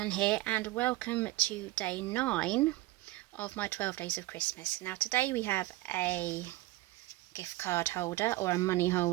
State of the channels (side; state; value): left; quieter; 18.3 dB